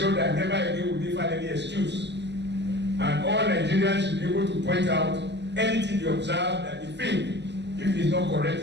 that never again will they find any excuse. And all Nigerians should be able to point out anything they observe that they think, if it is not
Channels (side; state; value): left; late; 0.50 ms